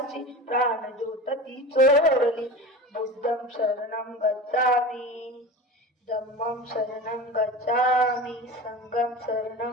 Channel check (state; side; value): normal; both; correlation 0.31